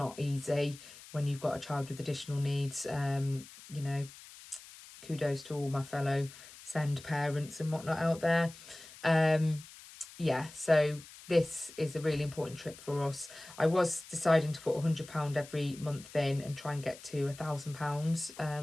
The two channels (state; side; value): noise; left; hiss, 18 dB below the sound